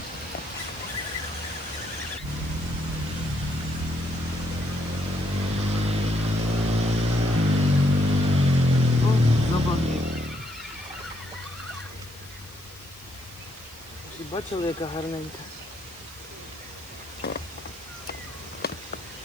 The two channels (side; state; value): left; noise; hiss, 21 dB below the sound